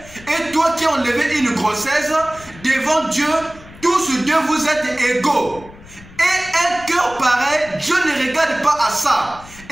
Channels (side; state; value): left; noise; rumble, 20 dB below the sound